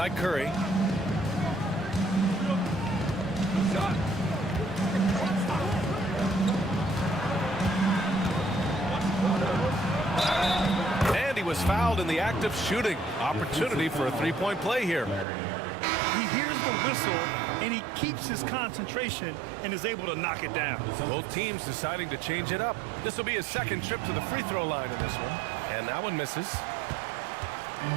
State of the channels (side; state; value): left; drops out; at 15.2 s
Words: Curry. And he was fouled in the act of shooting. Opportunity for a 3-point play here. He hears the whistle, and he keeps his concentration and is able to knock it down. Both teams deciding to change it up. This will be his 2nd trip to the free throw line in this one. And that one misses.